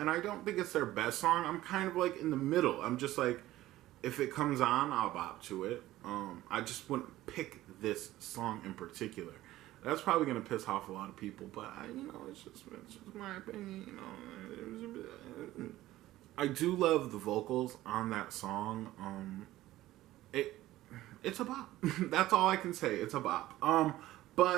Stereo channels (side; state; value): left; quieter; 15.7 dB